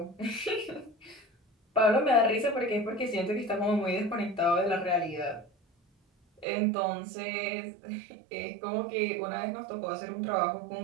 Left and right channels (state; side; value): drops out; left; at 6.5 s